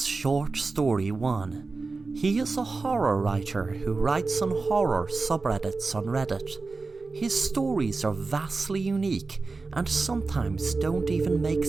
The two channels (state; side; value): quieter; left; 3.9 dB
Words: Short Story 1. He is a horror writer who writes on horror subreddits on Reddit. His stories are vastly unique and sometimes don't even make